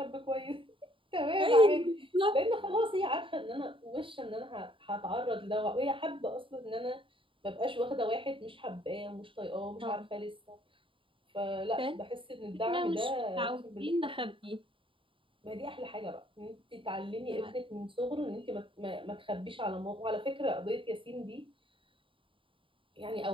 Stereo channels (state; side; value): late; left; 0.25 ms